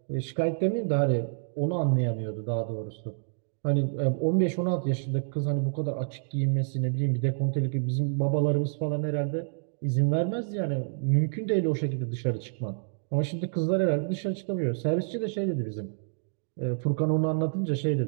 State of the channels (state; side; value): silent; left; digital silence